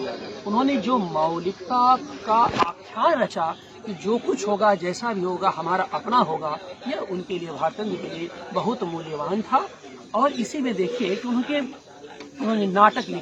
उन्होंने जो मौलिकता का आख्यान रचा कि जो कुछ होगा, जैसा भी होगा, हमारा अपना होगा, यह उनके लिए, भारतंद के लिए बहुत मूल्यवान था। और इसी में देखिए कि उन्होंने नाटक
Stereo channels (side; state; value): both; identical; correlation 1.00